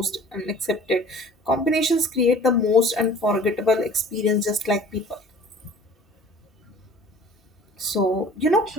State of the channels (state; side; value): normal; both; correlation 0.47